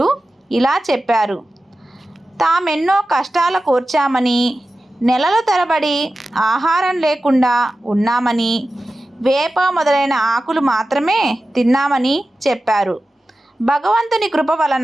ఇలా చెప్పారు: తామెన్నో కష్టాల కోర్చామని, నెలల తరబడి ఆహారం లేకుండా ఉన్నామని, వేప మొదలైన ఆకులు మాత్రమే తిన్నామని చెప్పారు. భగవంతుని కృప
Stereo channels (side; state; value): both; normal; correlation 0.94